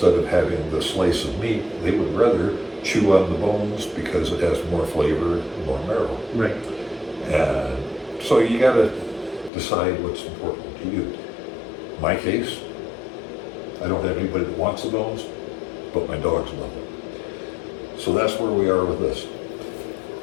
of having the slice of meat, they would rather chew on the bones because it has more flavor and more marrow. Right. And so you got to decide what's important to you. In my case, I don't have anybody that wants the bones, but my dogs love them. So that's where we are with this.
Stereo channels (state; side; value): drops out; right; at 9.5 s